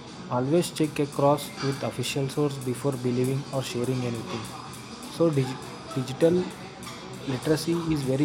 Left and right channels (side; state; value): both; identical; correlation 1.00